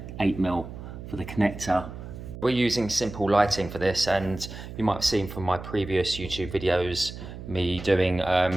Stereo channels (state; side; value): noise; right; hum, 11 dB below the sound